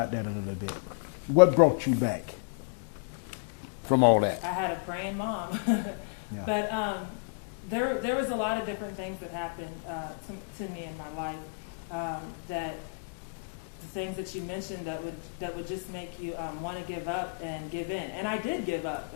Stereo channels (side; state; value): right; quieter; 39.4 dB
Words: that a little bit. What brought you back from all that? I had a praying mom. But there was a lot of different things that happened to me in my life, that the things that you mentioned that would just make you want to give up and give in. And I did give up,